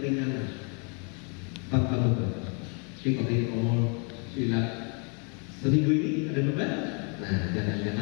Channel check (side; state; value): right; quieter; 37.2 dB